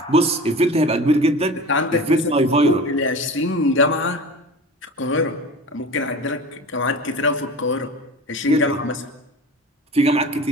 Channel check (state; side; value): normal; both; correlation 0.34